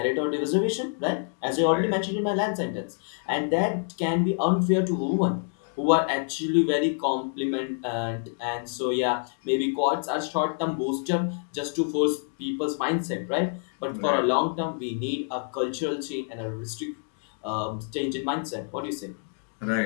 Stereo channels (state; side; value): silent; right; 60 dB below the other